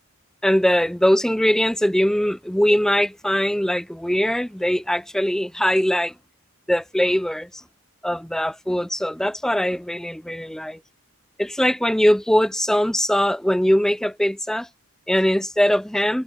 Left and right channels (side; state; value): both; normal; correlation 0.97